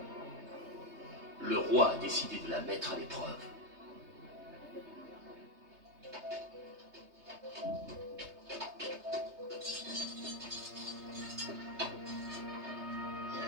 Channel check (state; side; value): late; left; 3.2 ms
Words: Le roi a décidé de la mettre à l'épreuve.